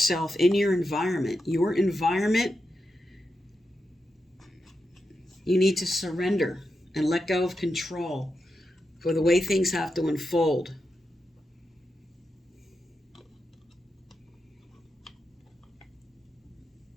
in your environment. Your environment, you need to surrender and let go of control for the way things have to unfold.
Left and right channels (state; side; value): normal; both; correlation 0.87